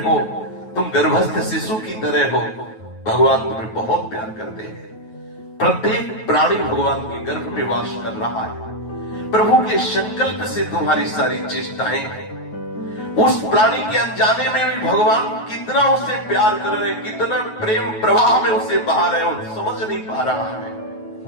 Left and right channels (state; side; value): late; right; 9.2 ms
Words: हो तुम गर्भस्थ शिशु की तरह हो, भगवान तुम्हें बहुत प्यार करते हैं। प्रत्येक प्राणी भगवान के गर्भ में वास कर रहा है। प्रभु के संकल्प से तुम्हारी सारी चेष्टाएं हैं। उस प्राणी के अनजाने में भी भगवान कितना उसे प्यार कर रहे, कितना प्रेम प्रवाह में उसे बहा रहे हो, समझ नहीं पा रहा है।